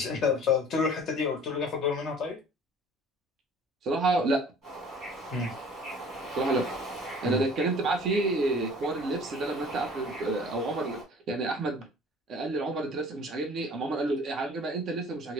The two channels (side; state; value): both; normal; correlation 0.48